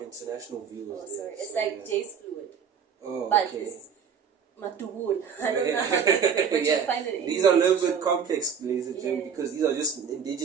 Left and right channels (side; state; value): left; quieter; 6.9 dB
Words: international viewers. Oh, sorry. It's like J's fluid. Oh, but okay. It's matugul. I don't know how to say it, but you find it in these are a little bit complex, ladies and gentlemen, because these are just